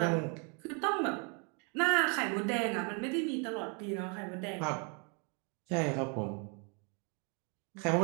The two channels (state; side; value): quieter; left; 35.4 dB